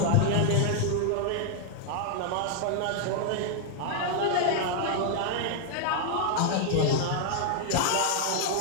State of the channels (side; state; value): both; different; correlation -0.01